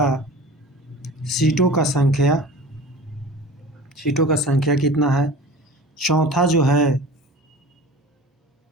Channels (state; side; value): normal; both; correlation 0.38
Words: सीटों का संख्या कितना है। चौथा जो है